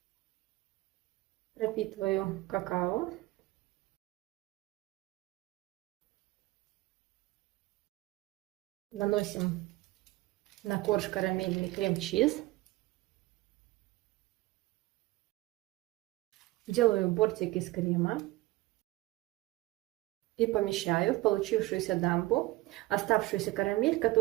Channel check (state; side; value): quieter; left; 18.8 dB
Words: Пропитываю какао. Наносим на корж карамельный крем-чиз. Делаю бортик из крема и помещаю в получившуюся дамбу оставшуюся карамель,